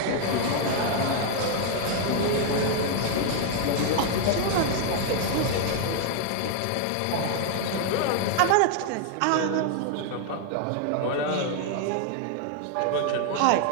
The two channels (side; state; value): both; different; correlation 0.00